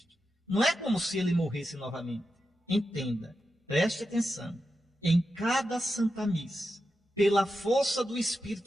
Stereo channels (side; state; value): both; normal; correlation 0.89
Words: Não é como se ele morresse novamente. Entenda, preste atenção. Em cada Santa Missa, pela força do